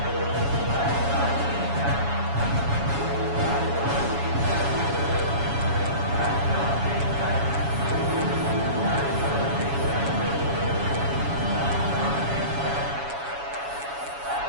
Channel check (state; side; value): late; left; 7.1 ms